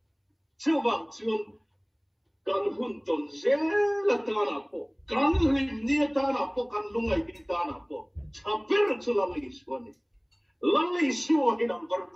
就往就干混沌些了打那波，干林你打那波，干龙爱你打那波，差别的就了历史我们，了历史我们能不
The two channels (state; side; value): identical; both; correlation 1.00